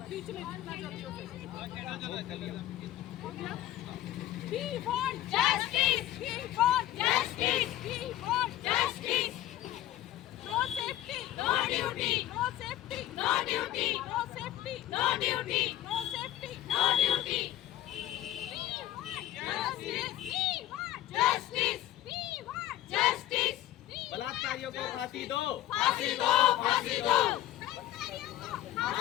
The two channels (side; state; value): right; quieter; 13.9 dB